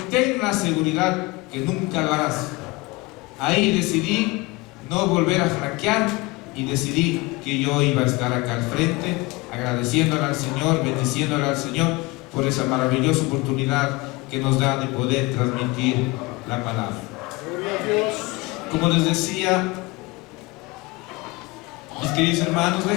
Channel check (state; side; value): quieter; right; 23.4 dB